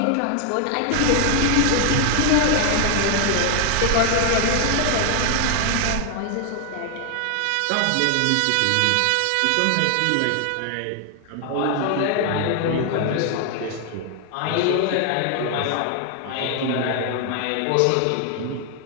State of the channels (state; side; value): different; both; correlation 0.00